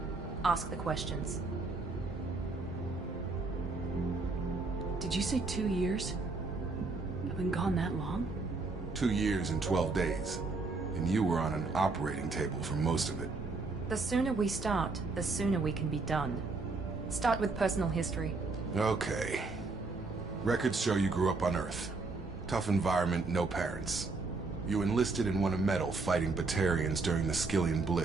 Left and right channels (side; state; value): left; quieter; 3.7 dB